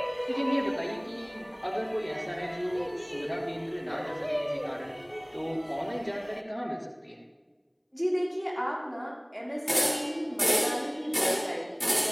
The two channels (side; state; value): both; identical; correlation 1.00